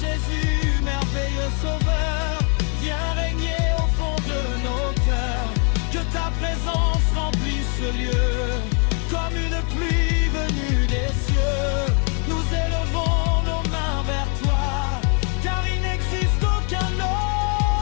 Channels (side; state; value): right; quieter; 39.8 dB